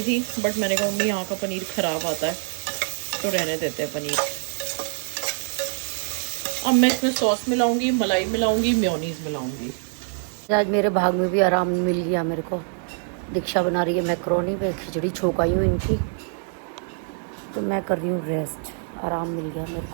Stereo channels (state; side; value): silent; left; 62 dB below the other